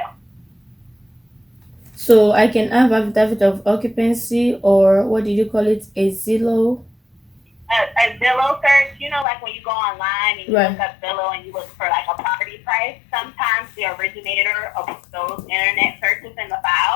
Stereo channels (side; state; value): right; drops out; at 9.2 s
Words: So I can have affidavit of occupancy, or what did you call it, a Zillow? A Zillow search, you know, like when you go online and you Right. look up Zillow and you look for like a property price, sometimes the originator of those internet searches in the